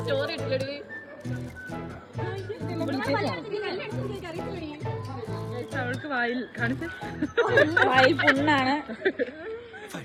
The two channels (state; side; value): identical; both; correlation 1.00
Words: സ്റ്റോറി ഇട്ടില്ലേ? അവൾക്ക് വായിൽ കാണിച്ച് വായിൽ പുണ്ണാണ്.